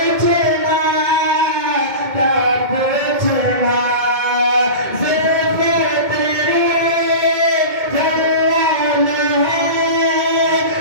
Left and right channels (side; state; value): left; late; 2.2 ms